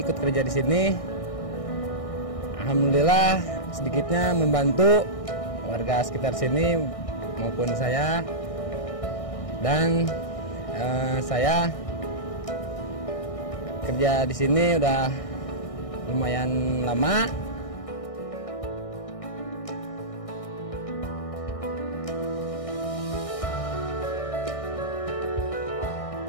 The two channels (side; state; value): right; late; 1.6 ms